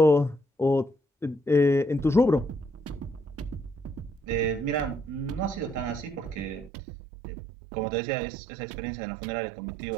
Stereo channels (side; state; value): left; drops out; at 6.7 s